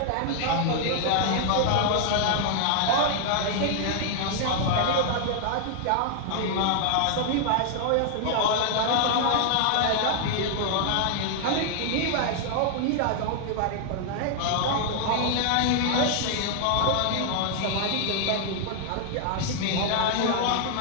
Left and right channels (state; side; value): different; both; correlation 0.00